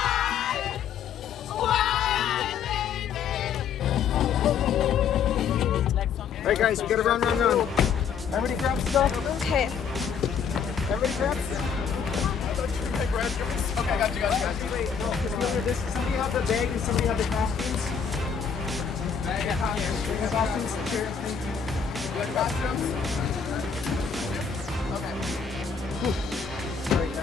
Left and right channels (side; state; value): right; quieter; 6.8 dB